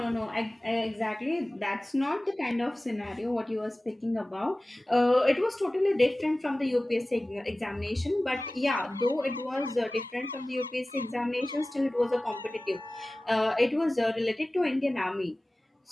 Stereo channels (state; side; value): normal; both; correlation 0.98